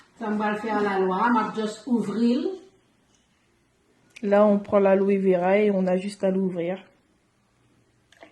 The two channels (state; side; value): identical; both; correlation 1.00